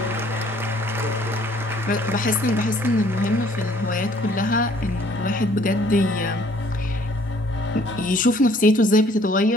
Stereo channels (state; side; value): normal; both; correlation 0.59